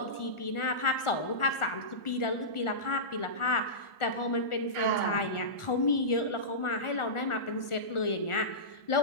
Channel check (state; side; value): late; right; 1.4 ms